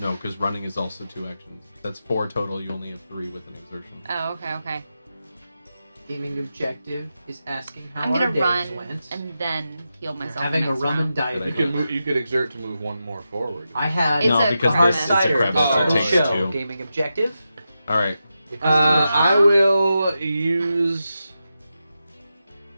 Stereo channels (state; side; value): inverted; both; correlation -0.89